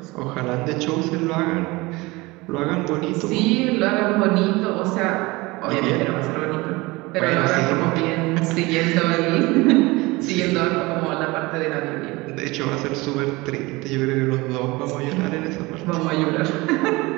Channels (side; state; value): left; quieter; 22.6 dB